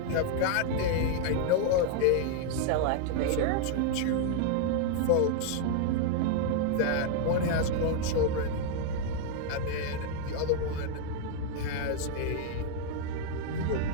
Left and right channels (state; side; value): different; both; correlation 0.00